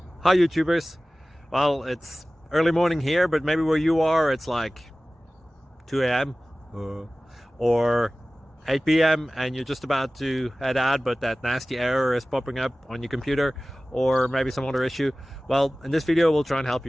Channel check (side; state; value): both; normal; correlation 0.97